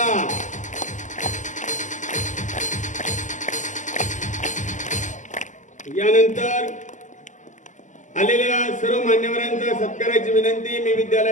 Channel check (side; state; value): right; late; 0.36 ms